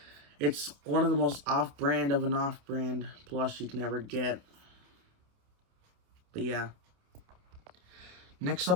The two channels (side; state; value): left; late; 28 ms